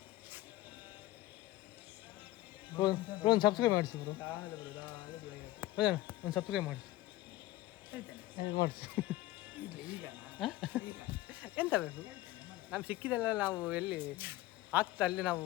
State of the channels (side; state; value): right; quieter; 16.8 dB